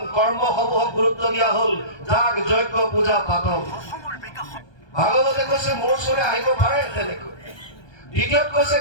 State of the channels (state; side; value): late; right; 1.2 ms